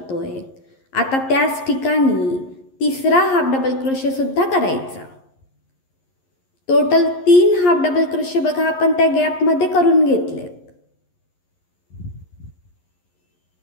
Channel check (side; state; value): right; late; 11 ms